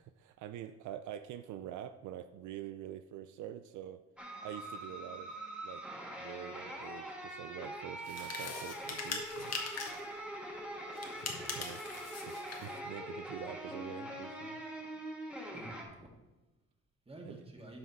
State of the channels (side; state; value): both; normal; correlation 0.30